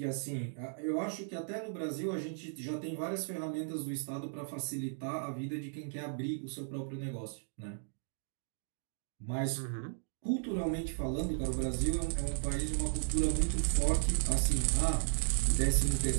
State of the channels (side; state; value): left; silent; digital silence